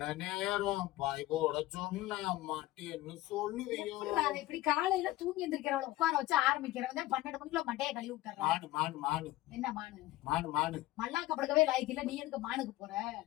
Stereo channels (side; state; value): right; quieter; 16.7 dB